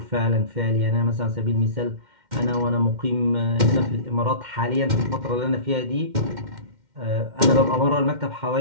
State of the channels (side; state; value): left; late; 2.1 ms